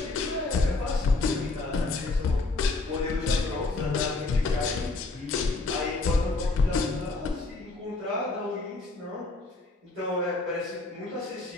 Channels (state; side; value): quieter; right; 3.4 dB